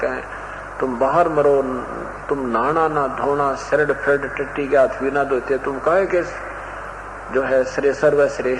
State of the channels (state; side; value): identical; both; correlation 1.00